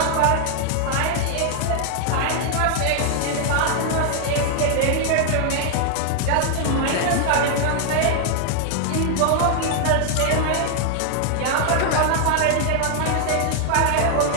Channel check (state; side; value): different; both; correlation 0.00